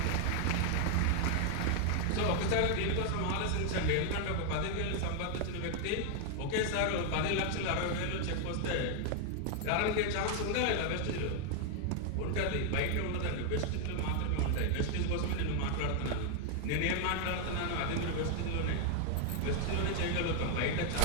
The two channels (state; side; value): different; both; correlation 0.00